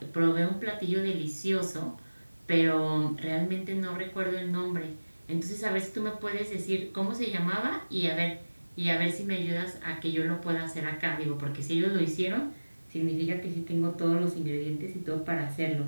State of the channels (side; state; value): both; inverted; correlation -1.00